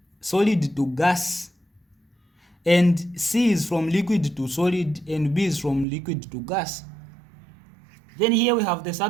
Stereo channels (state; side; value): drops out; left; at 5.9 s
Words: solid to gas, and C is from liquid to solid, and B is from liquid to gas. Then here we have the